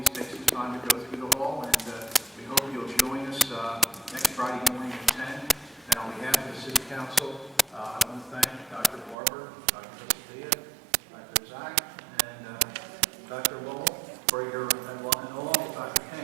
take some time to go through the hall, and we hope you'll join us next Friday morning at 10. And on behalf of the City Council,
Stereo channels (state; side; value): drops out; left; at 9.2 s